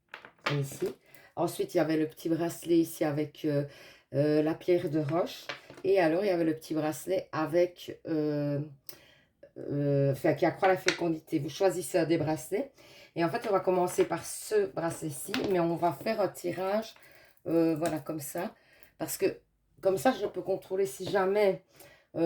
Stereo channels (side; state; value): both; identical; correlation 1.00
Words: ici. Ensuite il y avait le petit bracelet ici avec la pierre de roche. Et alors il y avait le petit bracelet avec, enfin qui accroît la fécondité. Vous choisissez un des bracelets. Et en fait on va commencer par ce bracelet-ci, mais on va faire un tirage, voilà comme ça. Parce que comme ça je peux contrôler si jamais,